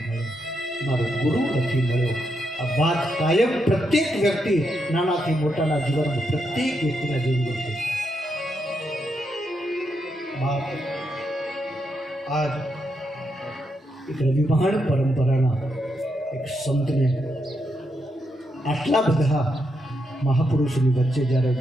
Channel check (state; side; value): normal; both; correlation 0.81